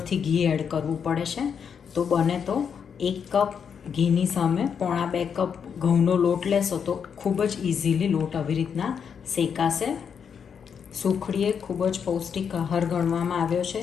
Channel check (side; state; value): right; quieter; 7.1 dB